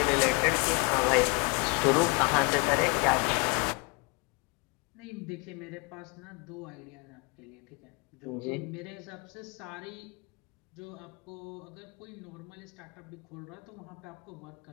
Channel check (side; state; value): right; quieter; 30.5 dB